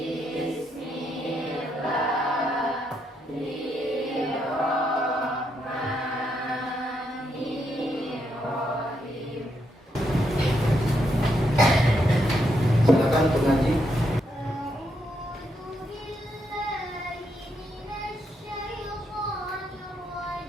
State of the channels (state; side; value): normal; both; correlation 0.79